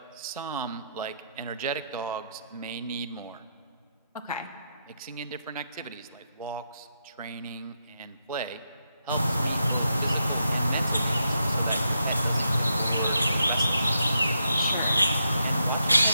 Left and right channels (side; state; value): both; inverted; correlation -0.82